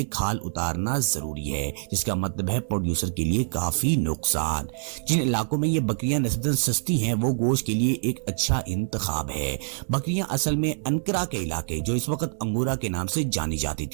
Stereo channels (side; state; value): left; silent; 61 dB below the other